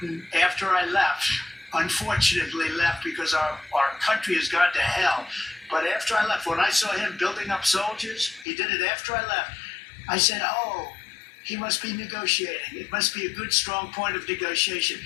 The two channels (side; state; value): right; drops out; at 8.5 s